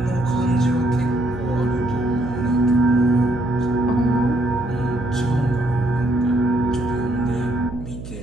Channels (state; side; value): noise; right; hum, 11 dB below the sound